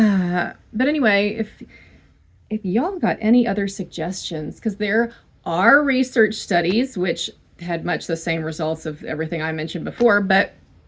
anyway, if y'all got any other suggestions, because there are research studies which had much the same results of everything I mentioned before, but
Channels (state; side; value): identical; both; correlation 1.00